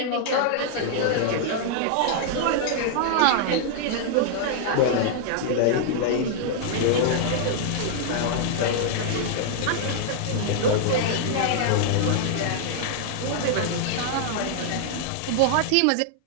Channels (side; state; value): both; different; correlation -0.01